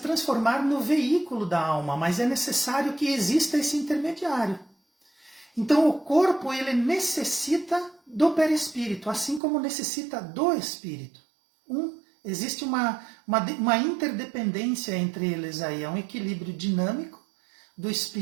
no veículo da alma, mas é necessário que exista esse intermediário. Então, o corpo ele necessita do perispírito, assim como necessita do espírito. Existe uma interdependência entre eles aí, é um equilíbrio dinâmico do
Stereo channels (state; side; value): drops out; left; at 9.4 s